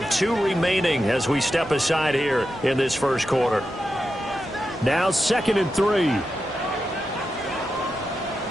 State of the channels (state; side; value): normal; both; correlation 0.89